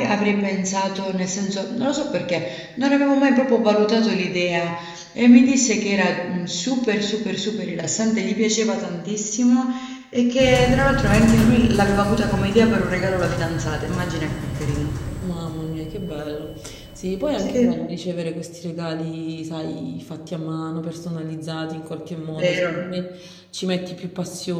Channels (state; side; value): identical; both; correlation 1.00